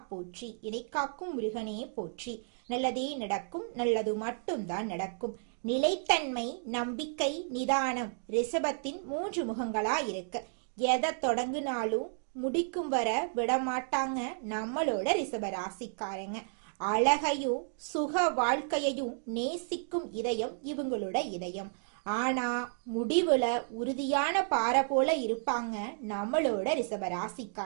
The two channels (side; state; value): left; silent; digital silence